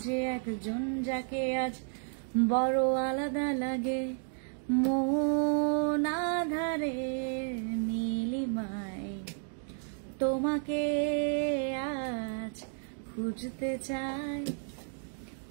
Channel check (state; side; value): silent; left; 56 dB below the other